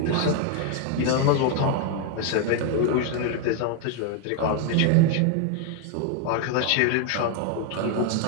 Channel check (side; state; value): both; different; correlation 0.00